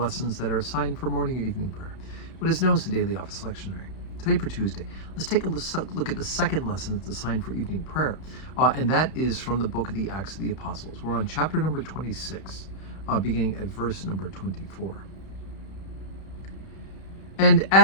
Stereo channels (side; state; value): right; late; 32 ms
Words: that are assigned for morning or evening prayer, what is known as the Daily Office Lectionary. Today for Tuesday, let's take a look at the second lesson that's assigned for evening prayer, and that is from the book of the Acts of the Apostles. We're on chapter number 26, beginning at verse number 24. And